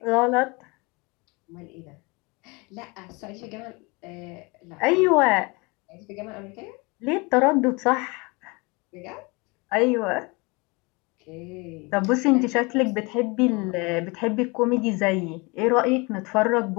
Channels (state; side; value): quieter; right; 27.5 dB